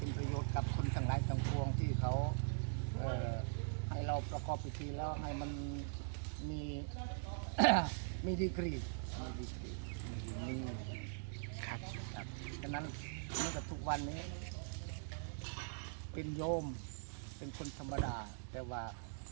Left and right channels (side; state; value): left; silent; digital silence